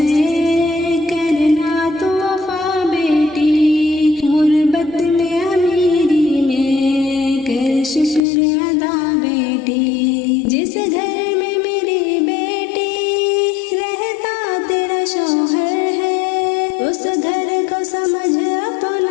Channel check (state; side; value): drops out; right; at 8.2 s